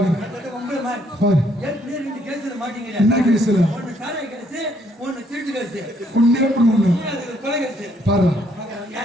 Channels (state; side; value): normal; both; correlation 0.68